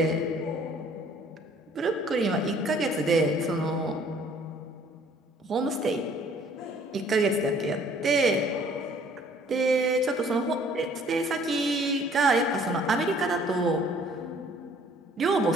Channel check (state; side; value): normal; both; correlation 0.57